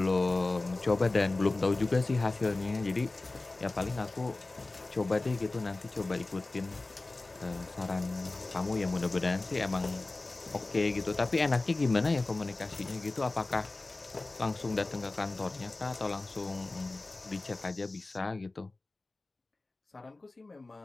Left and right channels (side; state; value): right; quieter; 3.2 dB